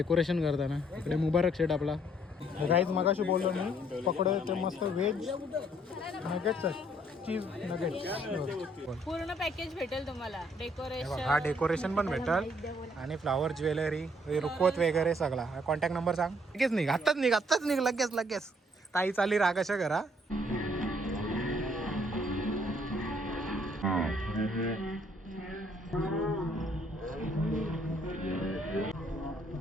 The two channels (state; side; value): normal; both; correlation 0.66